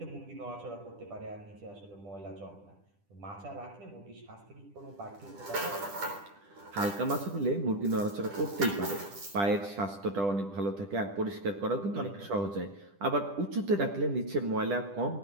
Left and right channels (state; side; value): late; left; 10 ms